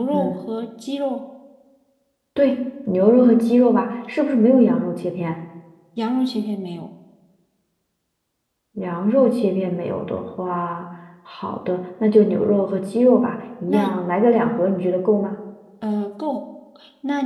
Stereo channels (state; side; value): identical; both; correlation 1.00